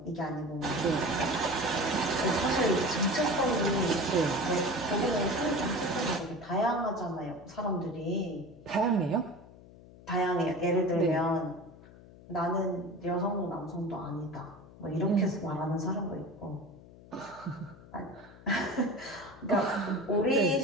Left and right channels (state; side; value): noise; left; hum, 21 dB below the sound